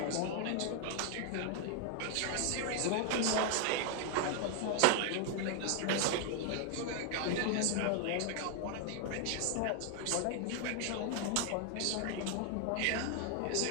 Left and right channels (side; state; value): both; different; correlation 0.00